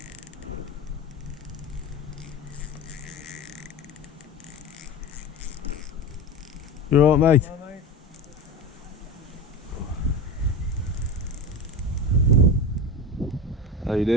You alright, mate? Hello, mate. How you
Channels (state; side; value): normal; both; correlation 0.26